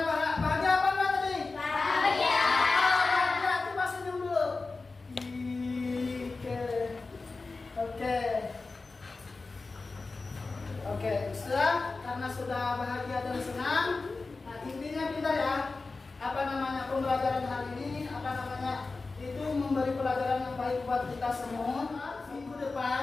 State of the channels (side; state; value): right; quieter; 3.8 dB